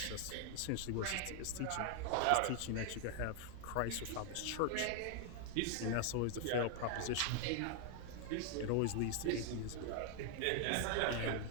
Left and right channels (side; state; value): both; different; correlation 0.00